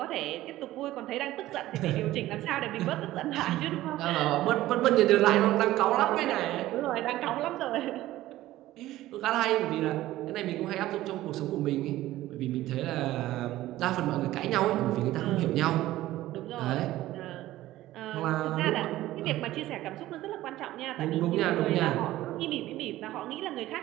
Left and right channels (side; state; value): left; quieter; 15.6 dB